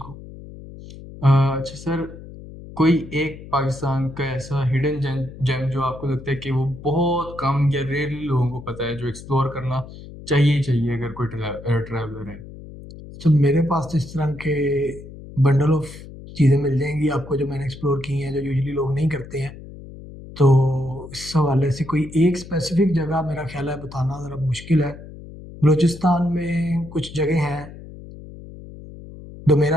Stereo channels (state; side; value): noise; left; hum, 15 dB below the sound